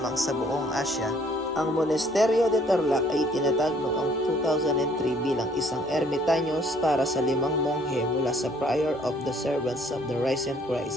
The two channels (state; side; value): normal; both; correlation 0.61